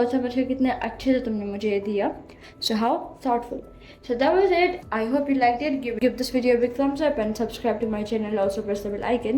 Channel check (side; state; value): both; identical; correlation 1.00